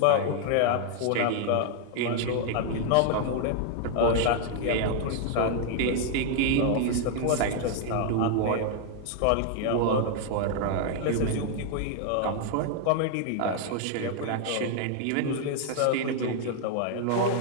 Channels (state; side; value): different; both; correlation 0.00